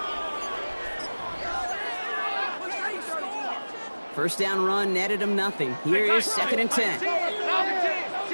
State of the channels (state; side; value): inverted; both; correlation -1.00